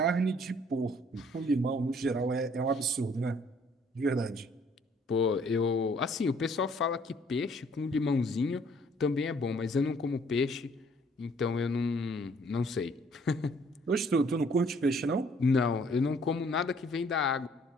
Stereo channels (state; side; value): normal; both; correlation 0.61